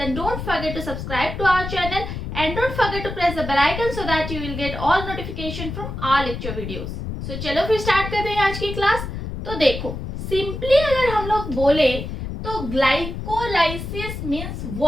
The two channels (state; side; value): noise; left; rumble, 6 dB below the sound